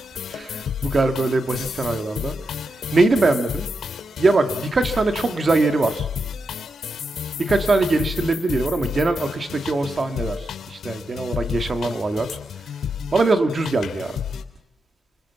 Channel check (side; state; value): both; normal; correlation 0.86